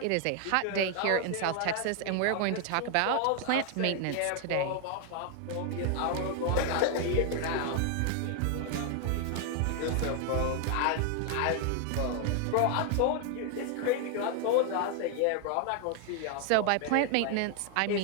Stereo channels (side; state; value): both; different; correlation 0.00